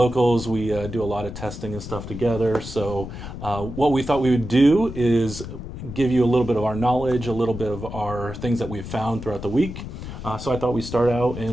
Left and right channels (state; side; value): noise; left; rumble, 9 dB below the sound